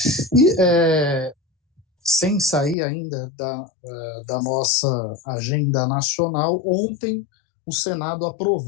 E sem sair ainda da nossa agenda nacional, ontem o Senado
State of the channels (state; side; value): drops out; right; at 2.8 s